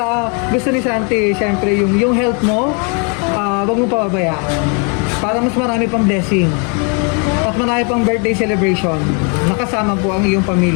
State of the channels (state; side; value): quieter; right; 36.9 dB